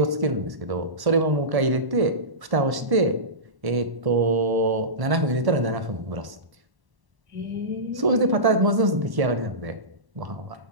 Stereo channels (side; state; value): left; late; 1.1 ms